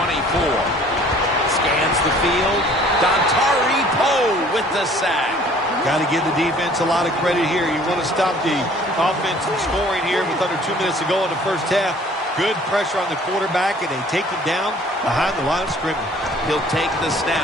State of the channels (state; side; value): normal; both; correlation 0.54